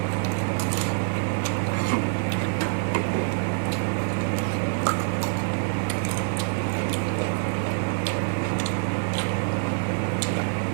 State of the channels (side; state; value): left; silent; digital silence